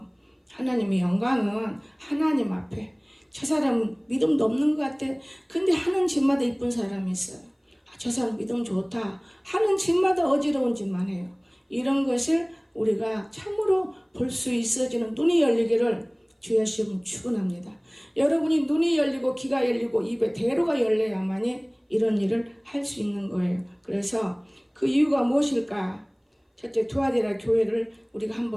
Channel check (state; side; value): identical; both; correlation 1.00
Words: 하나님의 영광은 하나님 앞에. 저 사람은 믿음도 없는 것 같아. 근데 하는 집마다 이쁜 사람이 있어요. 저 사람 믿음 좋다. 하는 집마다 어지러운 짓만 해요. 이런 것을 우리가 참으로 볼 수 있어지는 눈이 열리기를 주의 시험 축원합니다. 여러분이 눈이 열리고 귀가 열리고 입에 대로가 열려야만이 이런 일을 할 수 있는 거예요. 그래서 그 이유가 무엇일까? 첫째, 두아디라 교회를 우리가